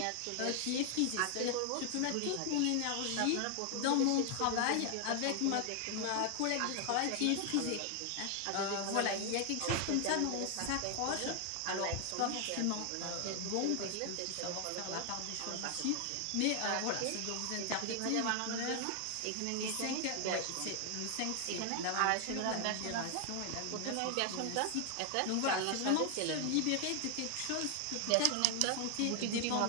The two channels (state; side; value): different; both; correlation 0.00